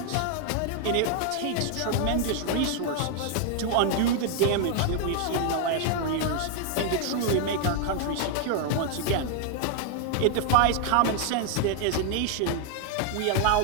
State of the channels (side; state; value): both; different; correlation 0.00